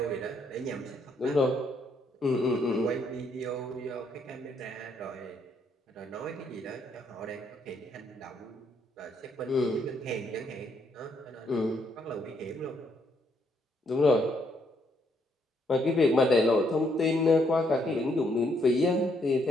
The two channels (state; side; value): normal; both; correlation 0.72